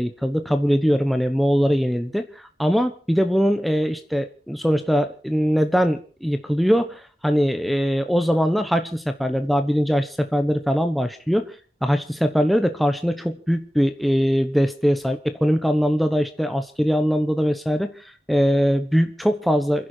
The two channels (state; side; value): normal; both; correlation 0.96